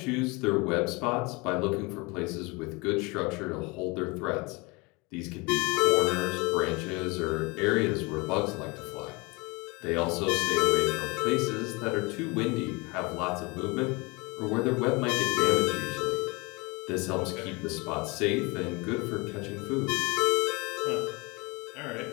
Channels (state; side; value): quieter; right; 26.7 dB